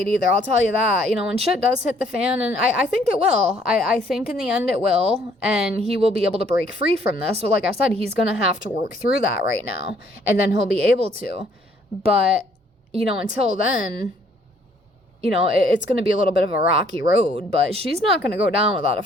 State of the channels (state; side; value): normal; both; correlation 0.63